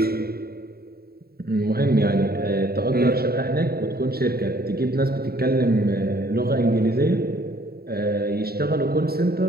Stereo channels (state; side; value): late; left; 0.45 ms